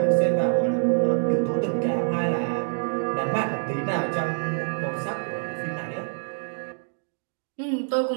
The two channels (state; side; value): silent; left; digital silence